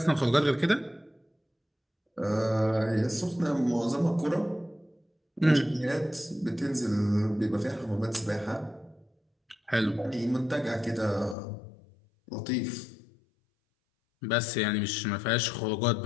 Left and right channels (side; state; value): right; drops out; at 11.4 s